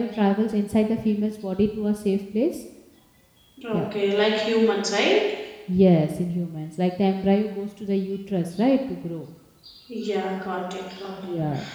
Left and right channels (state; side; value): identical; both; correlation 1.00